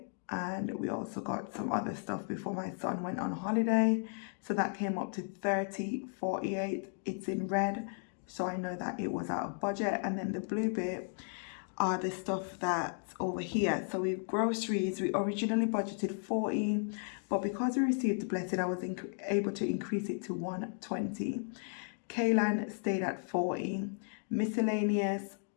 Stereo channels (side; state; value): right; silent; 55 dB below the other